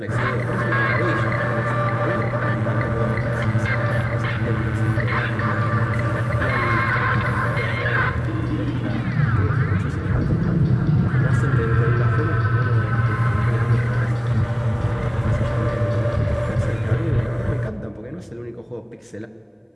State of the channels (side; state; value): both; identical; correlation 1.00